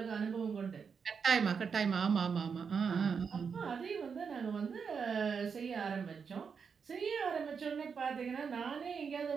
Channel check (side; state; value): left; quieter; 6.1 dB